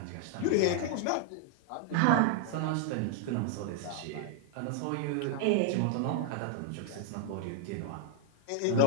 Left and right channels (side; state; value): both; different; correlation 0.00